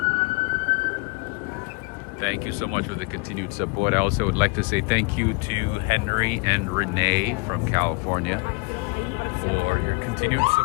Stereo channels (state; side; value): quieter; right; 29.2 dB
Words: Thank you so much for the continued support. I also would like to say thank you to Henry and Renee from California for your continued